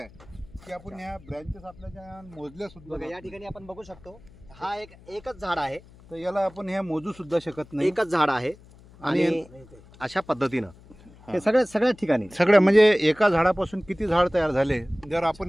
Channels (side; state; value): left; noise; hum, 23 dB below the sound